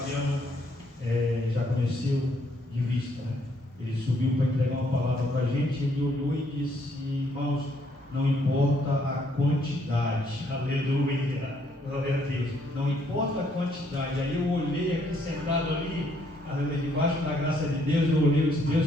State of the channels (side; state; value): both; normal; correlation 0.69